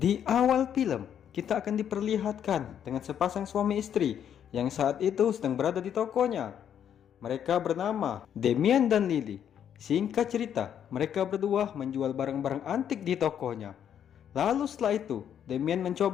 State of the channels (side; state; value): right; quieter; 9.1 dB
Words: awal film, kita akan diperlihatkan dengan sepasang suami istri yang saat itu sedang berada di tokonya. Mereka bernama Demian dan Lily. Singkat cerita, mereka berdua menjual barang-barang antik di tokonya. Lalu setelah itu, Demian